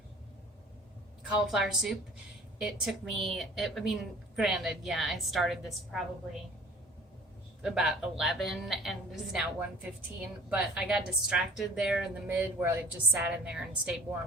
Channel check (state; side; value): normal; both; correlation 0.48